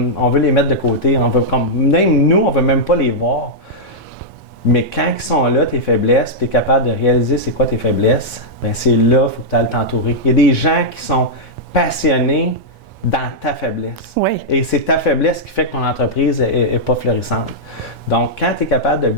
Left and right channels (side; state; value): both; normal; correlation -0.08